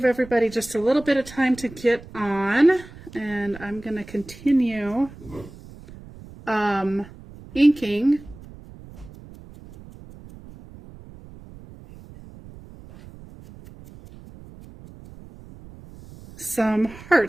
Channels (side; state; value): right; noise; rumble, 19 dB below the sound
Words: everybody just a little bit of time to get on, and I'm going to continue inking some